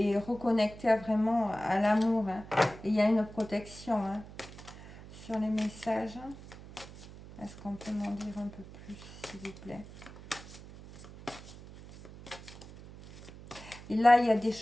reconnecter vraiment à l'amour. Hein. Et il y a une protection, hein, sur les messages. Est-ce qu'on peut m'en dire un peu plus, s'il vous plaît? Et là, il y a des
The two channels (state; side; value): noise; right; hum, 16 dB below the sound